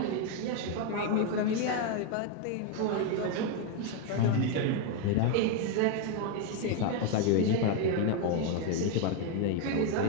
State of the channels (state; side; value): different; both; correlation 0.01